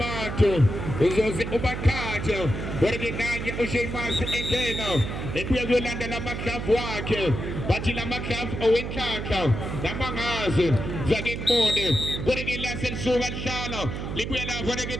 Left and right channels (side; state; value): right; noise; hum, 5 dB below the sound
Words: uzoze ubakhathe kodwa-ke nanye uSheamus engena ebuye kuyolanda lamadlavu wakhe bathi lamadlavu owenhlanhla namangazi zake ngibone kodwa-ke lase lisuka lihlala libuye lapho-ke